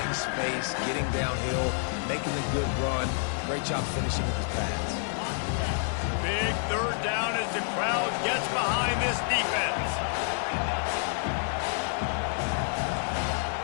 space, getting downhill, making a good run. Great job finishing with his pass. Big 3rd down as the crowd gets behind this defense.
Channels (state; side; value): silent; right; 59 dB below the other